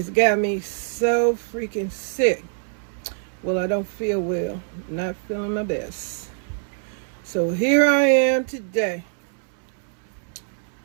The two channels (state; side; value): silent; left; 62 dB below the other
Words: got me so freaking sick. Well, I don't feel well, not feeling my best. So here I am today